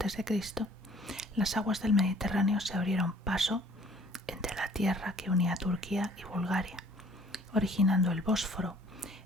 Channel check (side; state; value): both; normal; correlation 0.56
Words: las aguas del Mediterráneo se abrieron paso entre la tierra que unía Turquía y Bulgaria, originando el Bósforo